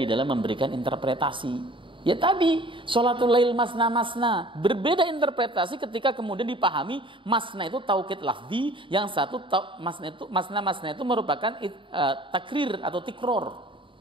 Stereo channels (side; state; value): left; late; 0.25 ms